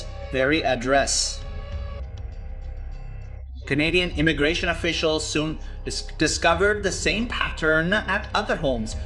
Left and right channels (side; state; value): both; identical; correlation 1.00